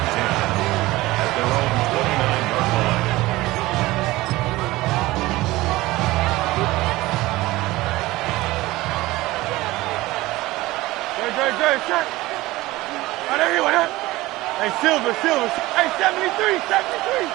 10 at their own 29-yard line. Great, shot. Oh, there he went up. Hey, Silver. Hey, 73.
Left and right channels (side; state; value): left; quieter; 18.9 dB